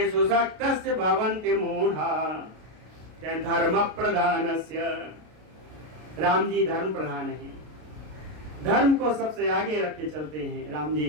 शक्तस्य भवन्ति मूढ़ा। धर्म प्रधानस्य, राम जी धर्म प्रधान है, धर्म को सबसे आगे रख के चलते हैं राम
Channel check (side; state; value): left; late; 33 ms